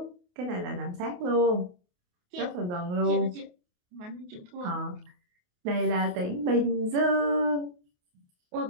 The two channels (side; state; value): left; late; 28 ms